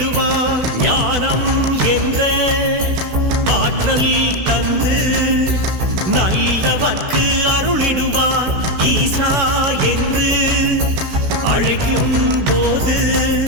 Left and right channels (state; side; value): late; left; 16 ms